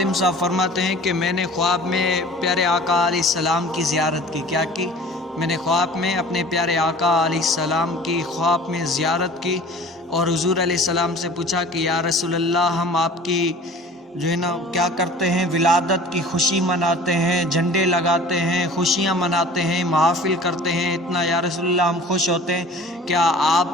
صاحب فرماتے ہیں کہ میں نے خواب میں پیارے آقا علیہ السلام کی زیارت کی۔ کیا کی؟ میں نے خواب میں اپنے پیارے آقا علیہ السلام کی خواب میں زیارت کی اور حضور علیہ السلام سے پوچھا کہ یا رسول اللہ، ہم آپ کی جو ہے نا کیا کرتے ہیں، ولادت کی خوشی مناتے ہیں، جھنڈے لگاتے ہیں، خوشیاں مناتے ہیں، محافل کرتے ہیں، اتنا یا رسول اللہ ہم خوش ہوتے ہیں، کیا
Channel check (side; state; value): both; normal; correlation 0.45